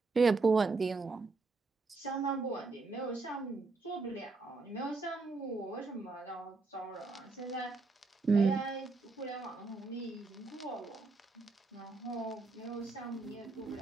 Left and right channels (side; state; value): left; quieter; 3.9 dB